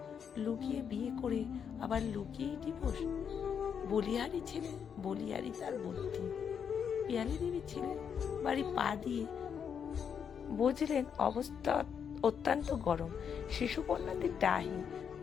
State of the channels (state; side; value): quieter; right; 7.4 dB